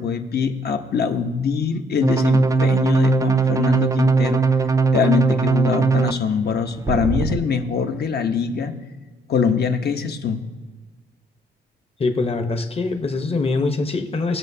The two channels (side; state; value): both; normal; correlation 0.66